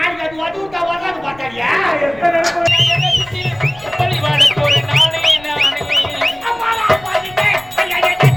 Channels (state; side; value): noise; left; rumble, 23 dB below the sound